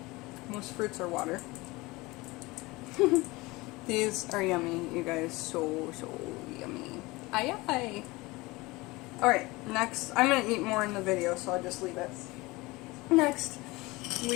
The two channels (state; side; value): quieter; right; 22.2 dB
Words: Most fruits are water. These are yummy, you guys. So yummy. Aye aye. Alright, next. I'm going to eat more in the video, so I'll just leave it. Next,